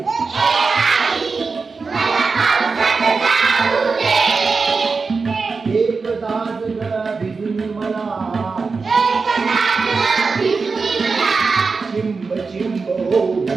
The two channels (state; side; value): quieter; left; 4.5 dB